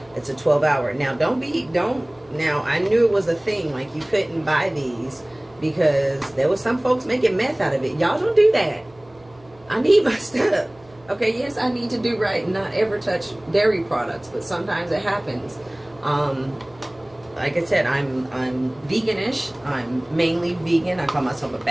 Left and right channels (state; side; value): noise; right; hum, 28 dB below the sound